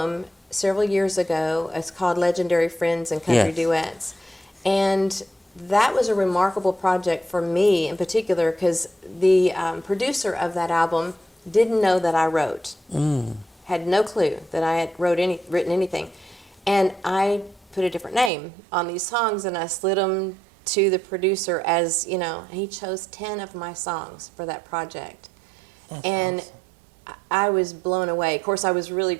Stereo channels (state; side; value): drops out; left; at 18.3 s